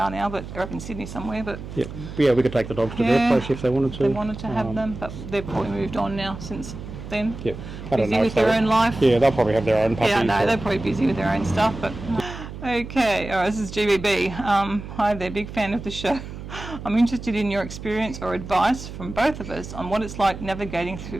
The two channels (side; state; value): right; noise; hum, 11 dB below the sound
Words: now, but they're up in Sydney somewhere. But Yeah, we could take the dogs to their place if they wanted to. They wanted to have them, but they've probably moved on now since then. Yeah, I don't Busy know with if they their were- own life. Yeah, they'll probably have their own puppies. Yeah, no, or- they're probably busy with their own stuff, but okay. All right, this is GBB. Hi there, big fan of the show. I'm interested in your experience or advice from both of us on what it's like navigating